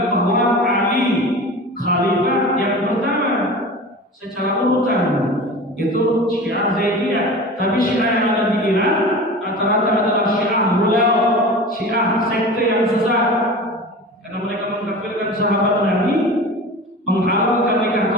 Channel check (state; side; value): normal; both; correlation 0.34